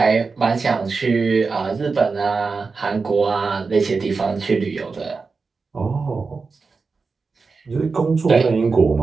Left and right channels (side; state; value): left; quieter; 4.5 dB